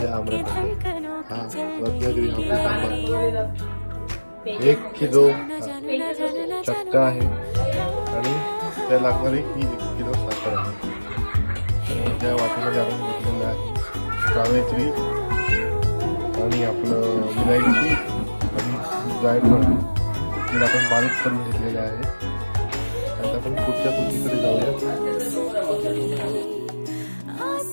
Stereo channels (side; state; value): both; inverted; correlation -1.00